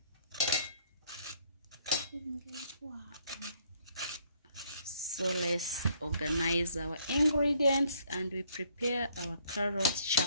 so let's organize our ingredients and we prepare our carrot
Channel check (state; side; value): inverted; both; correlation -0.65